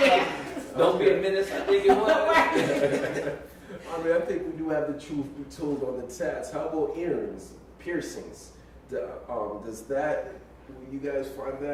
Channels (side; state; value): both; identical; correlation 1.00